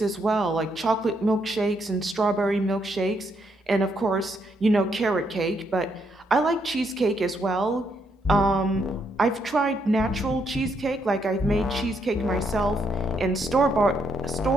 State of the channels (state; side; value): normal; both; correlation 0.75